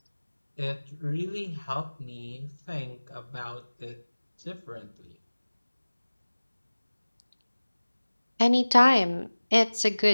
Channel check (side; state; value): both; inverted; correlation -1.00